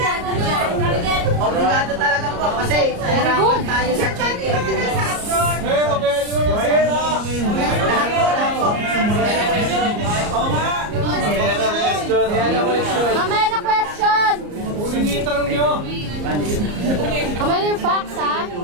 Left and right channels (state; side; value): late; left; 34 ms